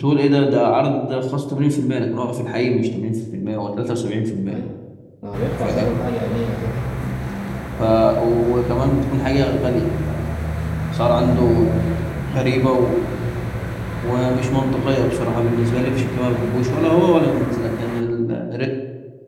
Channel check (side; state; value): both; identical; correlation 1.00